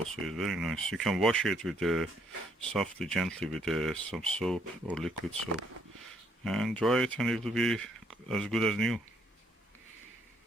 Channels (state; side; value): normal; both; correlation 0.69